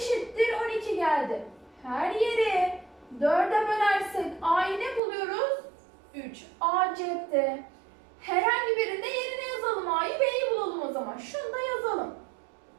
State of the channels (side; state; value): left; drops out; at 5.0 s